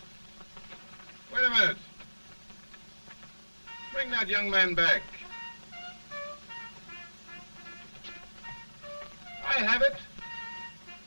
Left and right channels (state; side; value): inverted; both; correlation -1.00